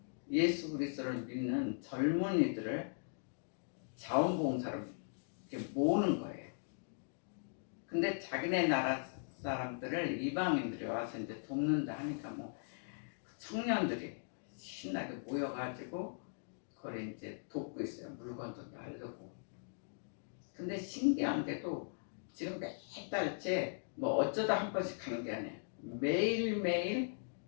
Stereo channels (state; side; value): silent; right; digital silence